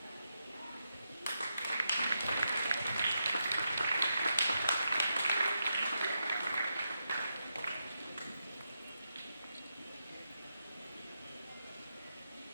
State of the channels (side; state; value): both; inverted; correlation -0.85